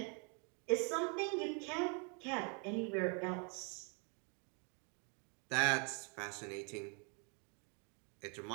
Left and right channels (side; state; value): left; quieter; 37.0 dB